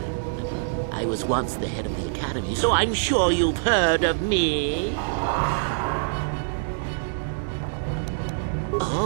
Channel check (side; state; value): left; silent; digital silence